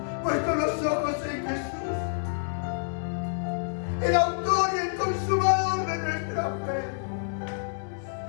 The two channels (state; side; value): silent; right; digital silence